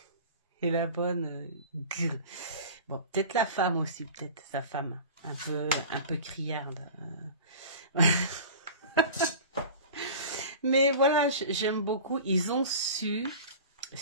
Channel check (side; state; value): both; inverted; correlation -0.37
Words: et la bonne. Bon, peut-être la femme aussi, peut-être sa femme, un peu criarde. Mais voilà, j'aime beaucoup. Ils ont su